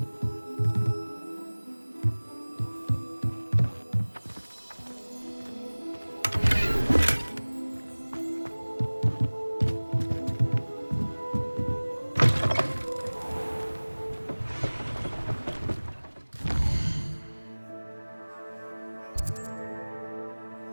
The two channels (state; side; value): inverted; both; correlation -1.00